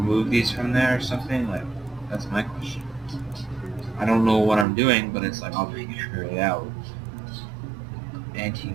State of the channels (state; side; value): drops out; left; at 4.7 s